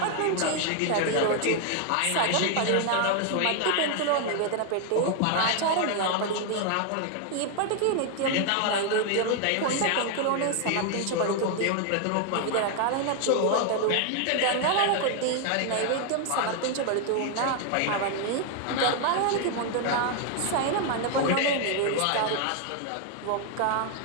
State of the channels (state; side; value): different; both; correlation 0.00